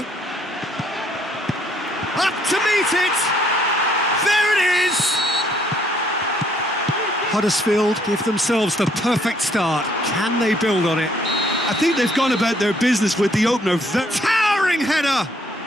Up to meet it! There it is! Huddersfield give themselves the perfect start. Can they build on it? I think they've gone about their business with the opener. Towering header!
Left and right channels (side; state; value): both; normal; correlation 0.66